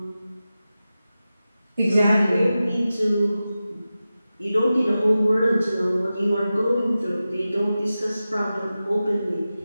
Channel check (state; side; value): inverted; both; correlation -0.94